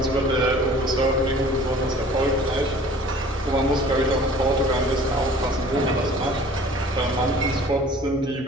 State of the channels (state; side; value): normal; both; correlation 0.48